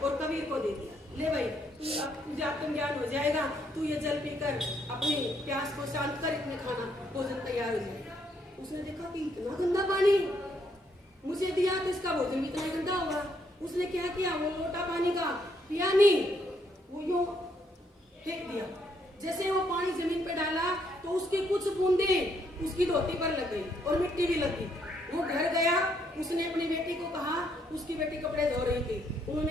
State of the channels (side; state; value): both; normal; correlation 0.72